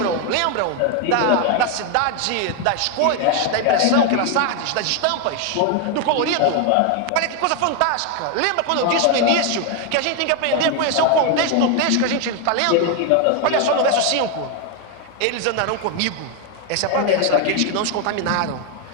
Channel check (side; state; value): both; different; correlation 0.01